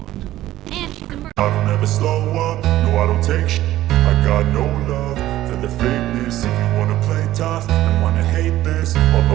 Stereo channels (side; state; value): left; quieter; 14.6 dB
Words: And she's a murderer. I don't ever slow up, no I don't take sh**. I got no love for the fakeness. If you wanna play tough and wanna hate this, I'll